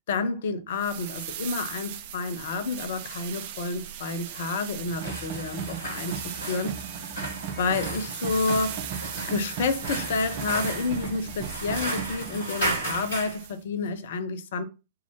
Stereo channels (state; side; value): inverted; both; correlation -0.48